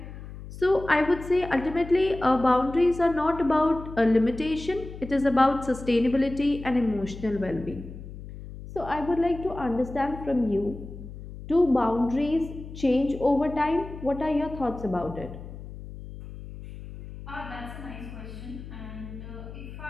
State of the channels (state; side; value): noise; left; hum, 13 dB below the sound